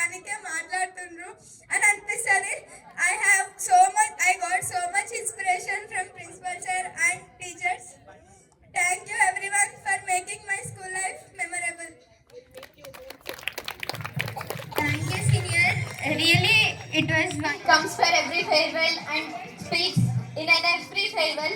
మాట్లాడుతుండ్రు అని అనిపిస్తుంది. I got so much inspiration from principal sir and teachers. Thank you everyone for making my school life memorable. Thank you senior. Really it was one comes for every farewell and speaks in every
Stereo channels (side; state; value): both; identical; correlation 1.00